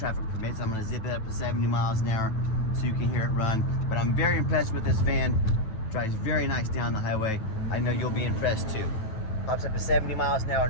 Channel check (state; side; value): late; right; 9.1 ms